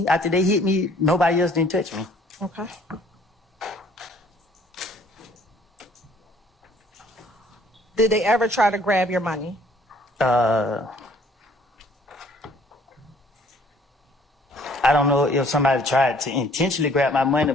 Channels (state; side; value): normal; both; correlation 0.58